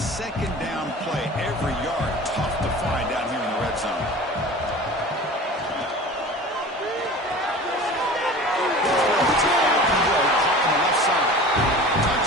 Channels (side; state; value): both; normal; correlation 0.39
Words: down play. Every yard tough to find down here in the red zone.